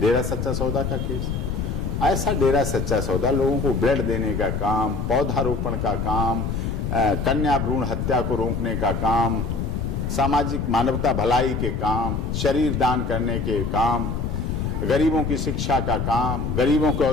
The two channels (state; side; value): noise; left; rumble, 2 dB below the sound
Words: सच्चा सौदा का केस। ऐसा डेरा सच्चा सौदा लोगों को ब्लड देने का काम, पौधारोपण का काम, कन्या भ्रूण हत्या को रोकने का काम, सामाजिक मानवता भलाई के काम, शरीर दान करने के काम, गरीबों की शिक्षा का काम, गरीबों के